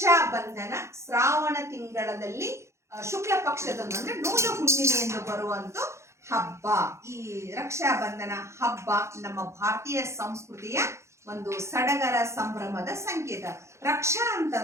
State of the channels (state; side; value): late; left; 0.14 ms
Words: Bandhan Shravana ತಿಂಗಳಲ್ಲಿ ಶುಕ್ಲ ಪಕ್ಷದಂದು ಅಂದ್ರೆ ನೂಲ ಹುಣ್ಣಿಮೆಯನ್ನು ಬರುವಂತ ಹಬ್ಬ. ಈ ರಕ್ಷಾ ಬಂಧನ ಹಬ್ಬ ನಮ್ಮ ಭಾರತೀಯ ಸಂಸ್ಕೃತಿಯ ಒಂದು ಸಡಗರ ಸಂಭ್ರಮದ ಸಂಕೇತ. ರಕ್ಷಾ